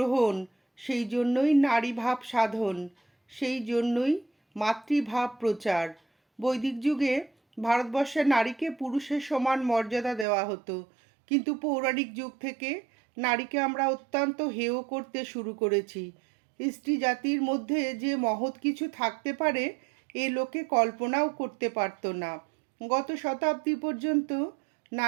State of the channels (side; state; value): left; drops out; at 10.2 s